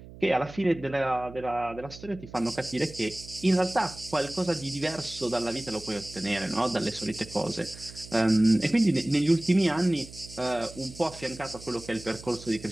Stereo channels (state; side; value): noise; right; hum, 17 dB below the sound